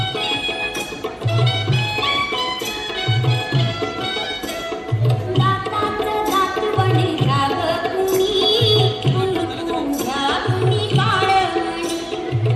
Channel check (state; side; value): identical; both; correlation 1.00